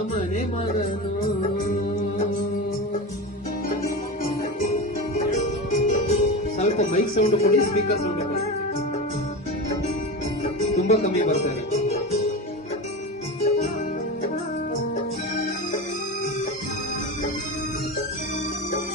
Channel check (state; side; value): normal; both; correlation 0.24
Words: ಮನೆ ಮಗನು. ಸ್ವಲ್ಪ ಮೈಕ್ ಸೌಂಡ್ ಕೊಡಿ, ಸ್ಪೀಕರ್ ಸೌಂಡ್ ಕೊಡಿ, ತುಂಬಾ ಕಮ್ಮಿ ಬರ್ತಾರೆ.